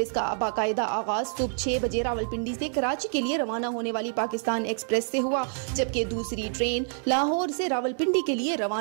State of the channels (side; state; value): left; silent; 60 dB below the other